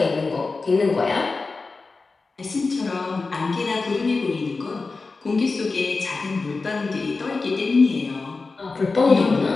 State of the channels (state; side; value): quieter; right; 4.0 dB